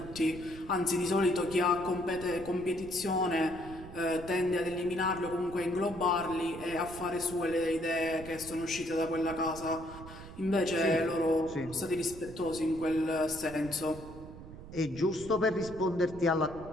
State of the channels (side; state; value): right; noise; rumble, 14 dB below the sound